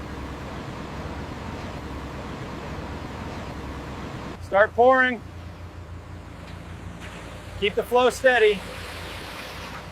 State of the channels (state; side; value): identical; both; correlation 1.00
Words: Start pouring. Keep the flow steady.